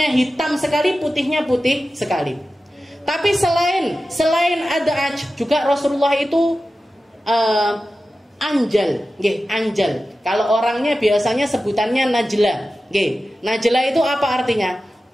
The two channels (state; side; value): normal; both; correlation 0.94